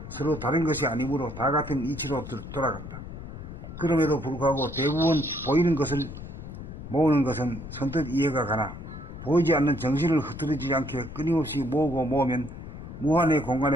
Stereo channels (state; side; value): noise; left; rumble, 11 dB below the sound